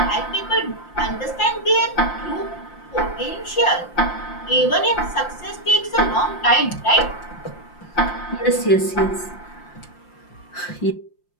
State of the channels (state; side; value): late; right; 5.7 ms